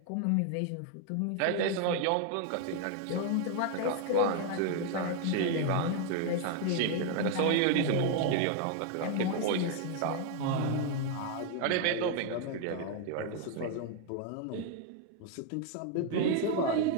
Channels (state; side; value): different; both; correlation 0.00